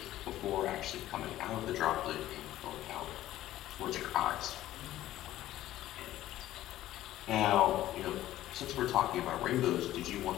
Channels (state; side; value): quieter; right; 14.2 dB